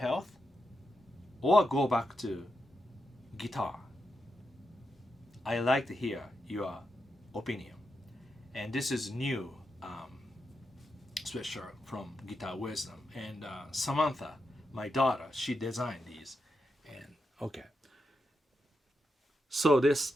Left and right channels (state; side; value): normal; both; correlation 0.86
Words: or go back to guitar? I like to hear your opinion. And this is new sweatshirt from Guitar Wisdom. And Samantha, my daughter, she designed these. And okay. So